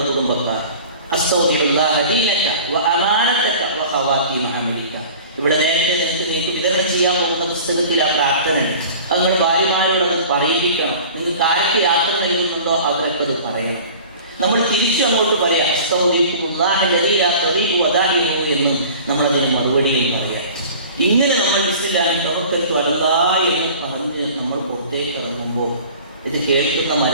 കുടുംബക്കാർ ഇവിടെ നേരത്തെ നിങ്ങൾക്ക് വിതരണം ചെയ്യാൻ പോകുന്ന പുസ്തകത്തിൽ ആ പ്രാർത്ഥന അങ്ങനെ ഭാര്യമാരോടത് പറയിപ്പിക്കണം. നിങ്ങൾക്ക് ആരൊക്കെ യാത്ര നൽകുന്നുണ്ടോ അവരൊക്കെ അത് പറയണം. നമ്മൾ തിരിച്ചു അങ്ങോട്ട് പറയാം എന്നും നമ്മളതിന് മറുപടിയും പറയാം. ഇങ്ങനെ നമ്മൾ ബിസ്മില്ലാഹി തവക്കൽതു അലല്ലാഹ് എന്ന് പറഞ്ഞ് നമ്മൾ പുറത്തേക്ക് ഇറങ്ങുമ്പോൾ ഇത് കേൾക്കുന്ന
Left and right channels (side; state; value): both; inverted; correlation -0.42